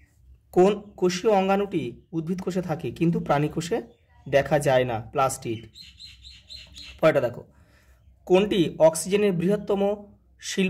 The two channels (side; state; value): both; identical; correlation 1.00